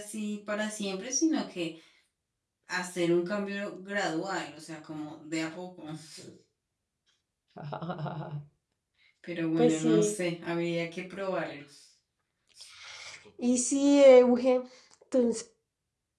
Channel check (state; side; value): identical; both; correlation 1.00